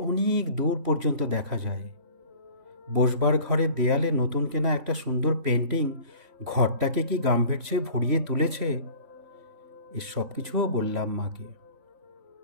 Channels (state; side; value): late; left; 3.1 ms